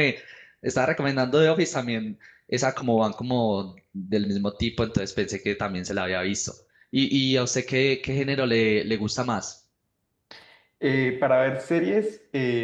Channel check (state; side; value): identical; both; correlation 1.00